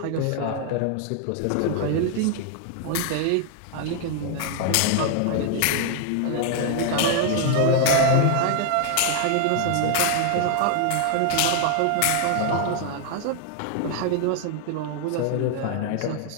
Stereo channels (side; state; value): both; different; correlation 0.00